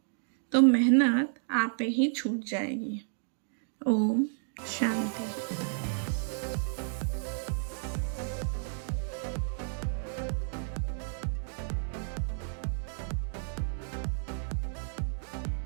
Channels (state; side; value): silent; left; digital silence